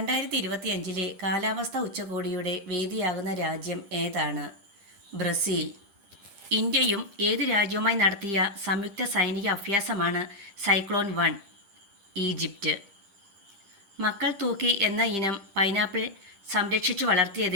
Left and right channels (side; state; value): left; late; 10 ms